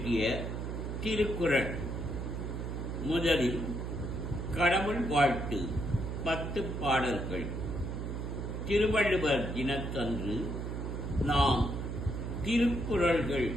திருக்குறள். முதலில் கடவுள் வாழ்த்து 10 பாடல்கள். திருவள்ளுவர் தினத்தன்று நாம் திருக்குறள்கள்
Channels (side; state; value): right; noise; hum, 4 dB below the sound